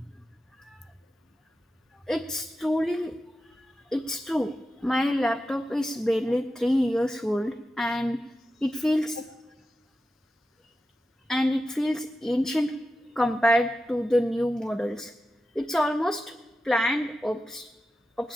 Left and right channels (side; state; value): both; normal; correlation 0.92